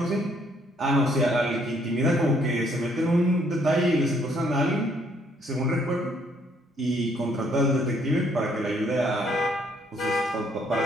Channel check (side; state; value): both; normal; correlation 0.67